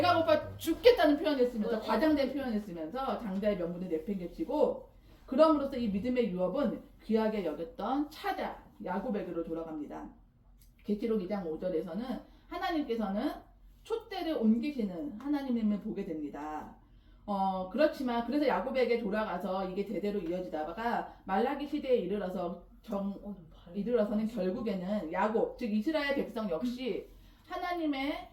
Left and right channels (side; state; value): both; identical; correlation 1.00